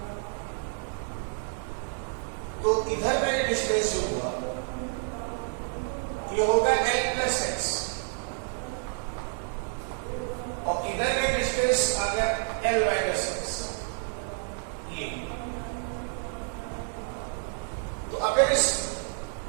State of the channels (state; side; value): silent; left; 58 dB below the other